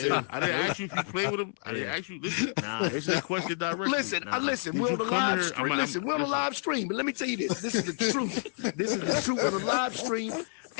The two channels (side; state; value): right; silent; 58 dB below the other